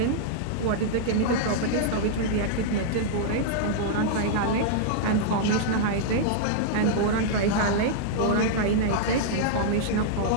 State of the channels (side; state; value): both; different; correlation -0.02